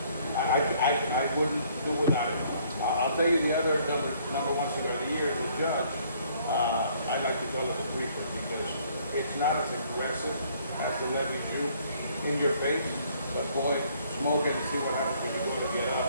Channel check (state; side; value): inverted; both; correlation -0.63